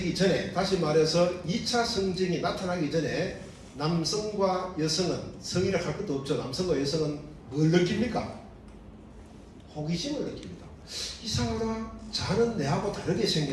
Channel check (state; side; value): identical; both; correlation 1.00